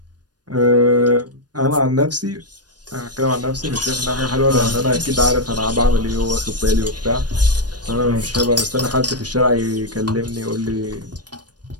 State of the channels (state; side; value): late; left; 0.69 ms